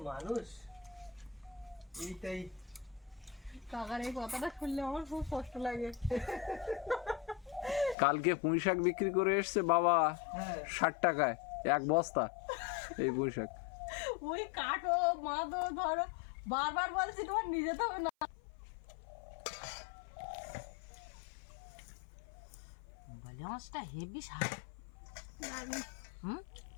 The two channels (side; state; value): right; drops out; at 8.0 s